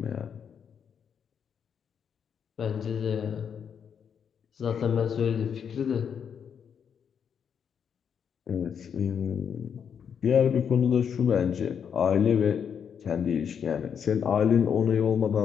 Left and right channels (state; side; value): quieter; right; 7.5 dB